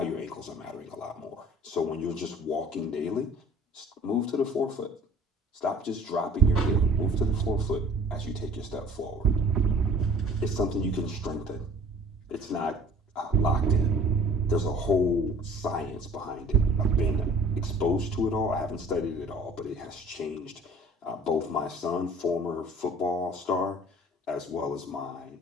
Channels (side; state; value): both; normal; correlation 0.49